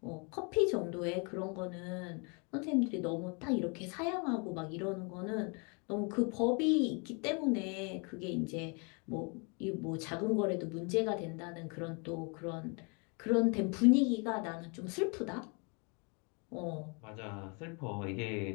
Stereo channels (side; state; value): right; quieter; 34.1 dB